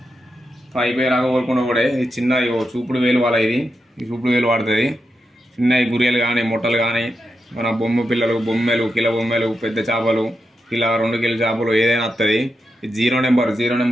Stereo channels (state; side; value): normal; both; correlation 0.87